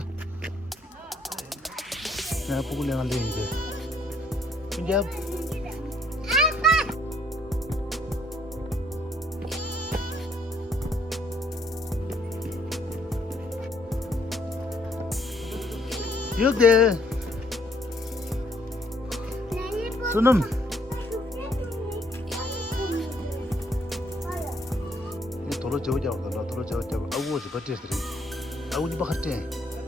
내가 보고 내가 이제. 이제 여기 수능 도로 저자고 도로 저자고 아우 저 버티스리 아우 니 바하테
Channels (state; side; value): normal; both; correlation 0.67